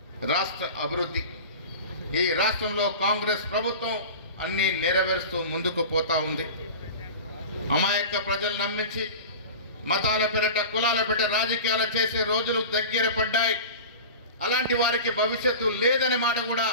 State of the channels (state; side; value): inverted; both; correlation -0.34